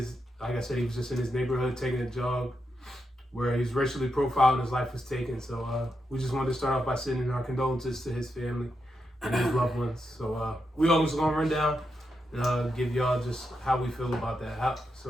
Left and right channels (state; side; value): normal; both; correlation 0.85